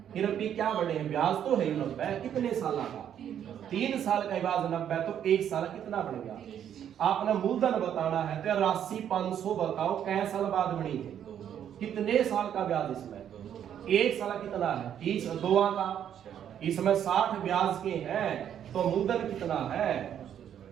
फिर अभी क्या बढ़े हैं? ब्याज तो है 90। कितने साल का? 3 साल का ब्याज 90 तो 1 साल कितना बढ़ गया? आपने मूलधन बताना है तो राशि 500 बताओ कै साल बाद बनी है? कितने साल का ब्याज इसमें? 1 साल कितना है? 30। 2 का इसमें 60 ब्याज के हैं तो मूलधन कितना है?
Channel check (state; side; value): quieter; left; 9.6 dB